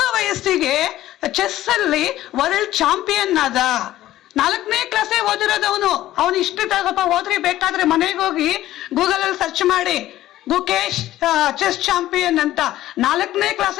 ವಯಸ್ಸಿಗೆ ಚೆಸ್ ಅಲ್ಲಿ ವರ್ಲ್ಡ್ ಚಾಂಪಿಯನ್ ಆದ. 4ನೇ ಕ್ಲಾಸೇ ಓದಿರೋದು ಅವನು. ಅವನು ಇಷ್ಟು ಸ್ವಲ್ಪ ಓದ್ರಿ, ಬೇಕಾದ್ರೆ ಮನೆಗೆ ಹೋಗಿ ಗೂಗಲ್ ಅಲ್ಲಿ ಸರ್ಚ್ ಮಾಡಿ, ಗುಕೇಶ್ ಚೆಸ್ ಚಾಂಪಿಯನ್ ಅಂತ. 4ನೇ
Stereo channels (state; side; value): quieter; right; 14.4 dB